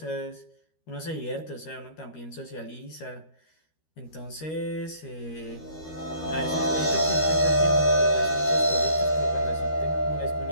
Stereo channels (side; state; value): right; late; 13 ms